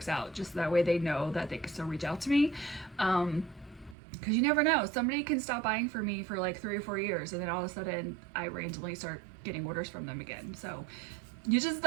out, just that way they know that they can still reach out to me. Because you never know, somebody can stop buying from me for like 3 or 4 years, and then all of a sudden I randomly start getting orders from them again. So you just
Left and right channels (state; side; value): drops out; left; at 4.0 s